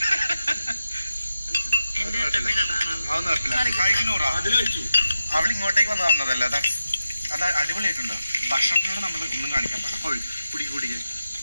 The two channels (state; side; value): inverted; both; correlation -0.90